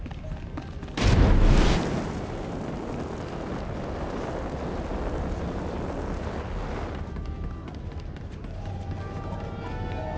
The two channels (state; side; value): identical; both; correlation 1.00